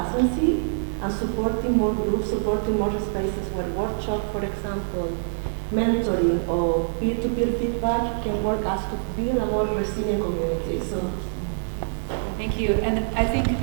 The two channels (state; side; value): silent; left; digital silence